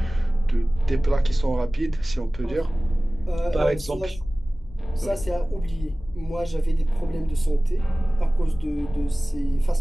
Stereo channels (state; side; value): normal; both; correlation 0.98